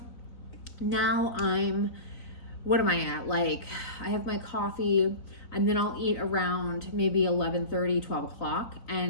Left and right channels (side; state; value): right; late; 3.9 ms